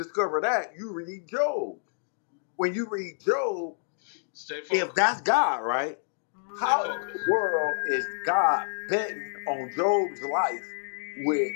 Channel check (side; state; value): right; silent; digital silence